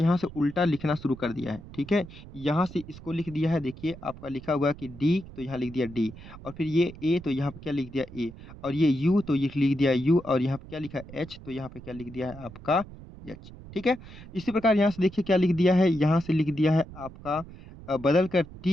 से उल्टा लिखना शुरू कर दिया है। ठीक है, यहाँ से इसको लिख दिया है, देखिए आपका लिखा हुआ है कि डी तो यहाँ लिख दिया डी और फिर ये ए तो यहाँ पे क्या लिख दिया ए और ये यू तो ये लिख दिया यू और यहाँ पे क्या लिखा है एच तो यहाँ पे क्या लिख दिया है आपका एच। ठीक है, इसी प्रकार यहाँ से देखिए क्या लिख दिया है, यहाँ से लिख दिया है आपका बदल कर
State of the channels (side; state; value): right; noise; rumble, 16 dB below the sound